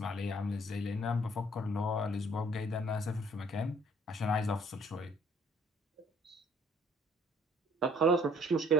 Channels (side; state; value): both; normal; correlation 0.59